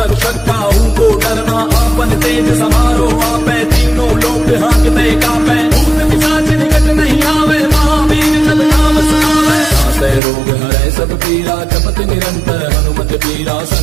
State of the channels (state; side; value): drops out; left; at 10.2 s